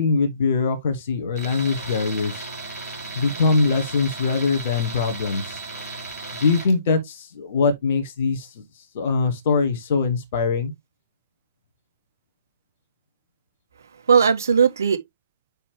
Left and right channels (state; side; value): inverted; both; correlation -0.66